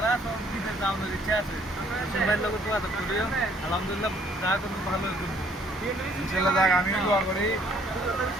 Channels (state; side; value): normal; both; correlation 0.63